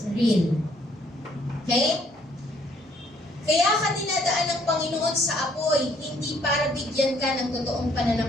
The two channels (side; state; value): both; normal; correlation 0.64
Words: real. Okay? Kaya ka dinadaan ng Panginoon sa apoy, hindi para bigyan ka ng totoong